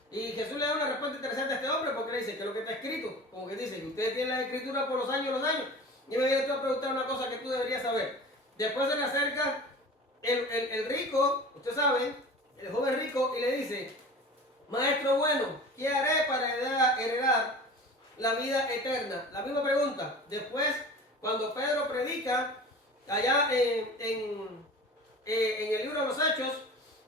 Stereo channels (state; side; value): normal; both; correlation 0.38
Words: Y Jesús le da una respuesta interesante a este hombre porque le dice que lo que está escrito, como que dice que ustedes tienen la escritura por los años, y me viene tú a preguntar una cosa que tú deberías saber. Después se le acerca el rico, usted sabe, el joven rico, y le dice, Maestro bueno, ¿qué haré para heredar la vida eterna? La misma pregunta. Después, cuando Pedro predica, allá en el libro de los Hechos,